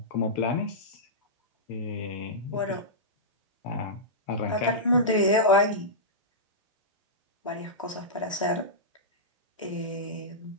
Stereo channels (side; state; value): both; normal; correlation -0.14